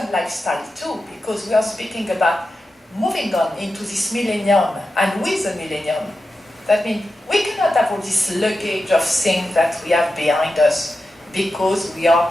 lifestyle too, because we are speaking about moving on into this millennium and with the millennium. That means we cannot have all this luggage of things that we have behind us because we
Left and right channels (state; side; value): normal; both; correlation 0.91